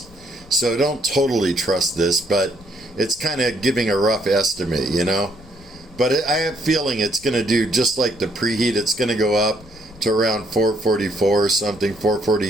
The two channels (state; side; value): noise; left; rumble, 23 dB below the sound